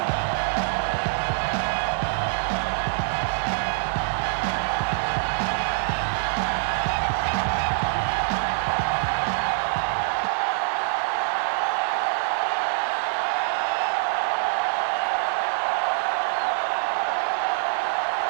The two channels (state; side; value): silent; left; digital silence